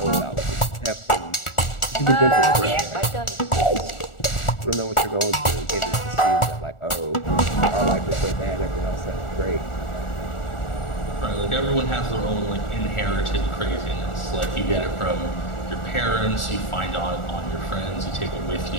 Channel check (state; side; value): late; right; 1.4 ms